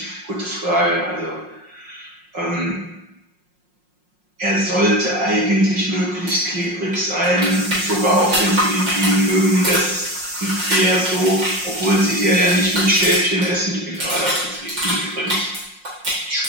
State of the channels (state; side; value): late; left; 5.6 ms